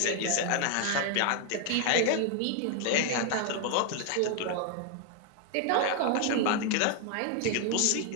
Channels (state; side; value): different; both; correlation 0.00